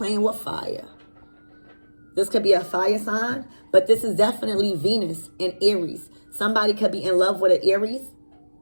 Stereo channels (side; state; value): both; inverted; correlation -1.00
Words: with fire. This could be a fire sign, but this is definitely Venus and Aries. Somebody could be in love with an Aries,